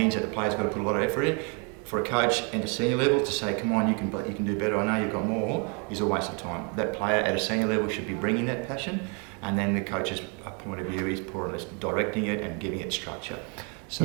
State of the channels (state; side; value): quieter; left; 35.1 dB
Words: that the player's got to put a lot of effort in. For a coach at a senior level to say, come on, you can do better, I know you've got more, is a waste of time. That player at a senior level should be bringing that passion, and then the coach's point of view is more or less directing it and giving it structure.